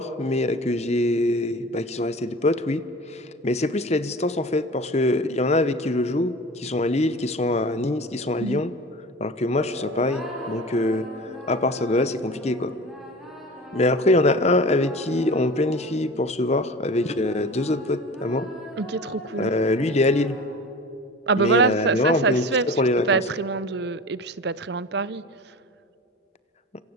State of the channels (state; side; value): normal; both; correlation 0.37